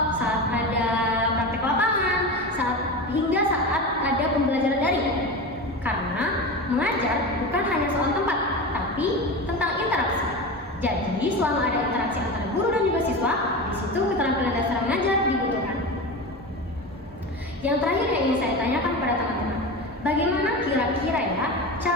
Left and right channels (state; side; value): normal; both; correlation 0.25